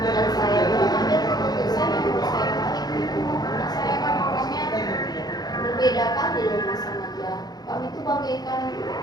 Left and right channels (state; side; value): late; right; 0.19 ms